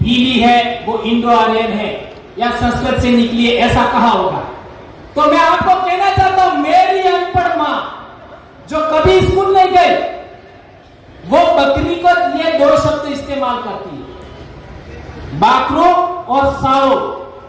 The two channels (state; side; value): identical; both; correlation 1.00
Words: भीली है वो इंडो आर्यन है या संस्कृत से निकली है, ऐसा कहा होगा। तो मैं आपको कहना चाहता हूं, मेरी अनपढ़ मां जो कभी स्कूल नहीं गई वो बकरी को ये दो शब्द इस्तेमाल करती है, बाकरो और साओ।